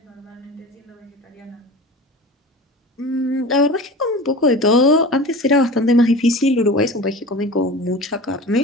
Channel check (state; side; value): normal; both; correlation 0.35